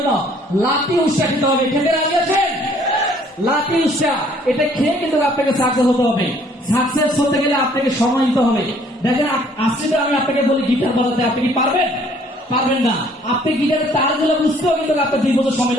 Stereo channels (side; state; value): both; normal; correlation 0.60